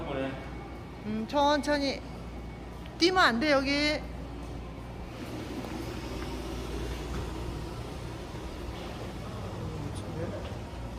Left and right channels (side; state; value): both; identical; correlation 1.00